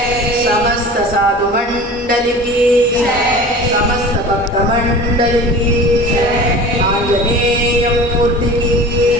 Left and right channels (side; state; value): both; normal; correlation 0.38